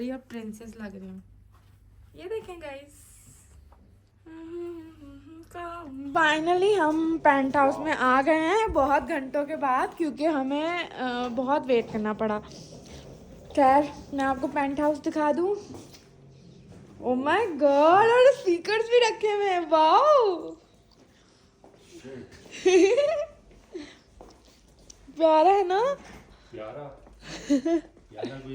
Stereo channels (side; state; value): both; identical; correlation 1.00